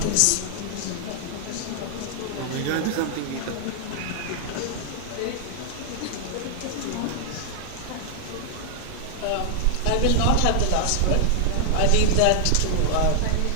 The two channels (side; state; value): both; different; correlation 0.00